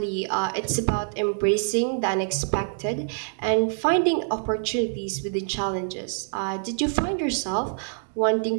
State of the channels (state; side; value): silent; left; digital silence